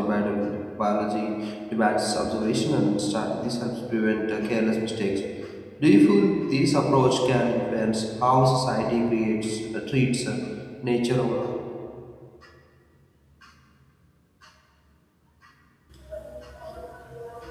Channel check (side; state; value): both; identical; correlation 1.00